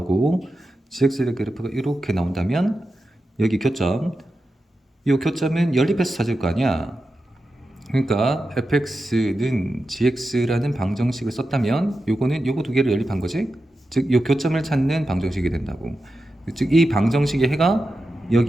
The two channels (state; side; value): normal; both; correlation 0.91